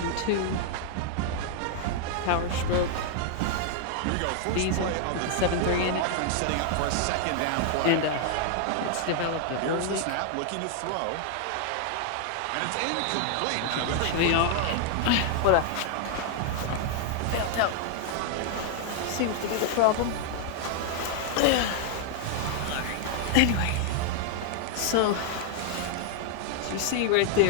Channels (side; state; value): both; different; correlation 0.00